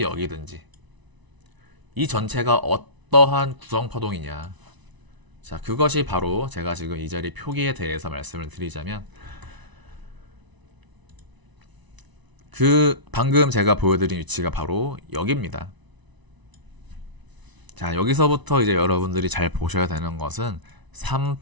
여기든지 이 전체가 어떠한 구성파동이냐, 자, 그것이 바로 제가 지금 이 자리 표기에 대해서 말씀을 드리자면, 방금 제가 보여드린 위치가 바로 여기입니다. 자, 여기서부터 이제 여러분들이 잘 보셔야 되는 것은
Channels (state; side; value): late; left; 1.0 ms